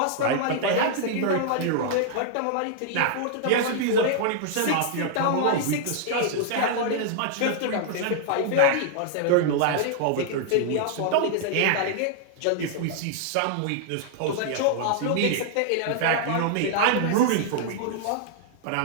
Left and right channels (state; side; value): different; both; correlation -0.01